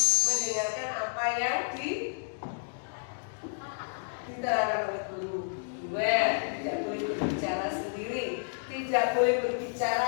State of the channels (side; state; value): right; silent; digital silence